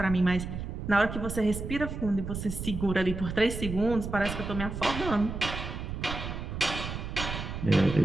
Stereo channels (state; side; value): noise; right; rumble, 6 dB below the sound